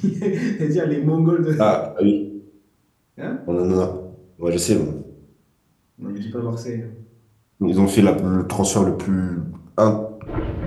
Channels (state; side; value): identical; both; correlation 1.00